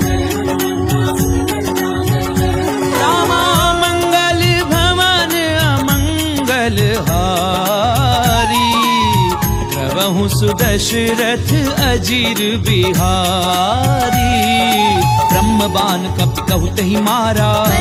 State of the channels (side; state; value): both; identical; correlation 1.00